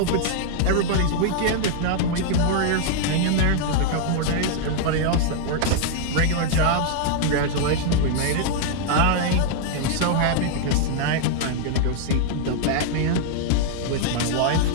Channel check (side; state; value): both; different; correlation -0.01